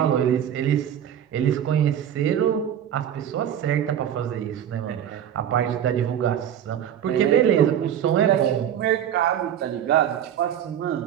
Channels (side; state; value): left; quieter; 9.9 dB